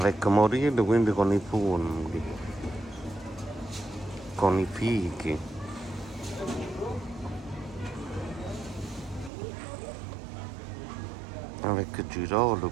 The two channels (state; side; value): drops out; left; at 9.3 s